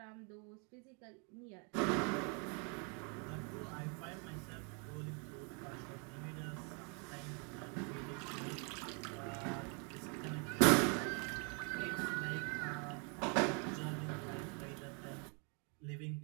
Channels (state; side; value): quieter; left; 36.5 dB